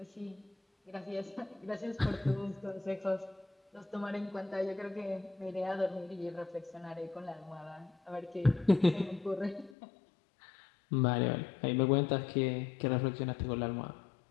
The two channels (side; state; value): right; drops out; at 9.8 s